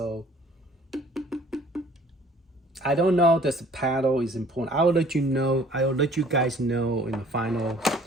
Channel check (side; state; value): both; normal; correlation 0.54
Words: I don't know that the Paddle is important. I will let you know. I will let you guys know in the final.